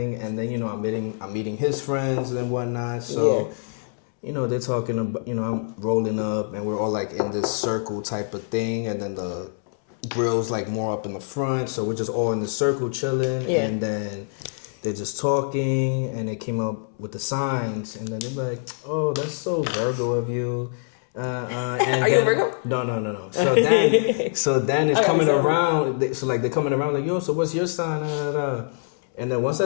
and then I'm meeting his friends and whatnot. So, they're talking about, I'm rolling up, and we're all like in this circle type of thing, and then the grill's like more up in the front, so we're just all in the circle chilling, and then they're just talking, and they came up with the signs, and then they're like, "Oh, that's so Virgo of you." And Are you a Virgo? No. So then it's coming around. So like they're coming around like, "Yo, so what's your sign?" And then once I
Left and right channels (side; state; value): right; silent; 62 dB below the other